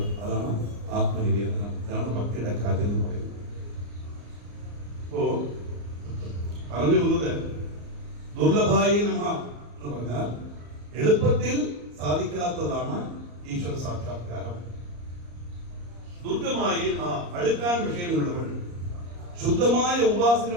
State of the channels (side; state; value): left; late; 34 ms